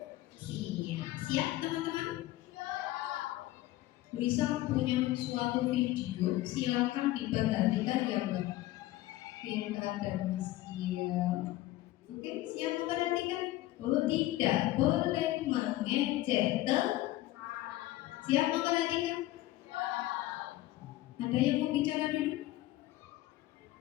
Siap, teman-teman? Bisa punya suatu video, silakan diperhatikan ya, Mbak Vinta dan Mas Kia. Oke, siap memperhatikan? Oh, tidak boleh mengejek teman. Siap memperhatikan? Ada Ada yang mau bicara dulu?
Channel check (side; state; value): right; quieter; 16.4 dB